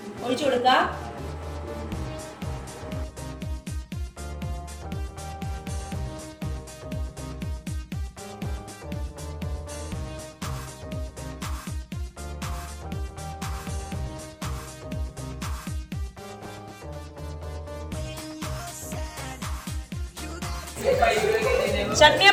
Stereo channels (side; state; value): both; identical; correlation 1.00